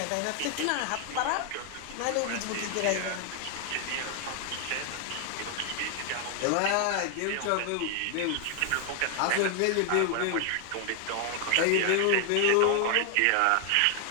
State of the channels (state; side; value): different; both; correlation 0.00